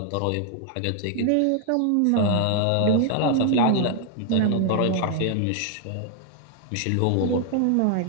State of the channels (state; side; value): different; both; correlation 0.00